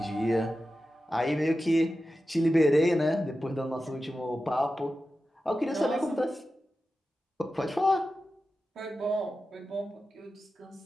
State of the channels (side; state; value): both; normal; correlation 0.92